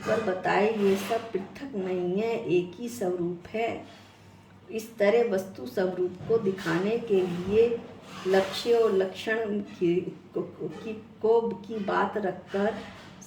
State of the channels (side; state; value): both; identical; correlation 1.00